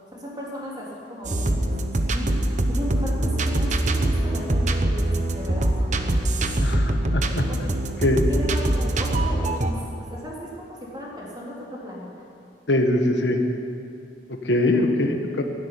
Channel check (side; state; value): both; normal; correlation 0.74